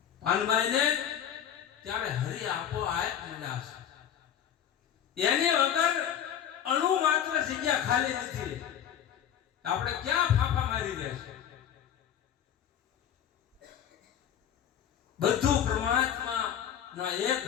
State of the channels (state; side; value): quieter; right; 9.6 dB